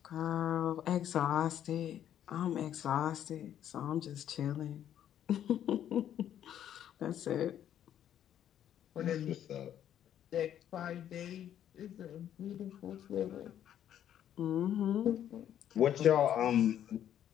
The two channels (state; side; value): quieter; right; 10.4 dB